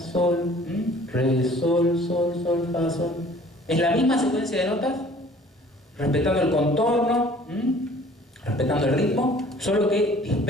re, sol, sol, sol, fa, sol. Es la misma secuencia de notas, respetando el contorno, respetando el ritmo, solo que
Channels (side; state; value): both; normal; correlation 0.52